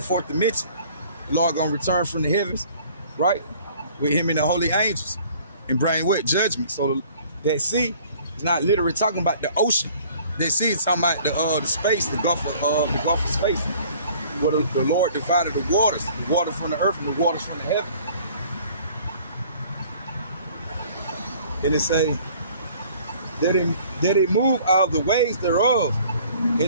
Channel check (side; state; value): both; inverted; correlation -0.53